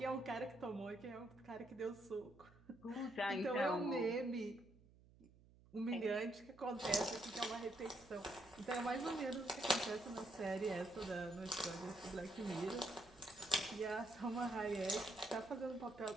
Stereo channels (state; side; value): noise; right; hum, 24 dB below the sound